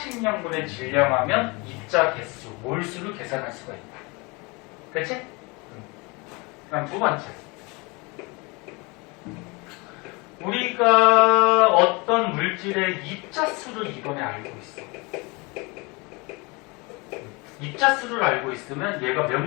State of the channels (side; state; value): right; quieter; 27.4 dB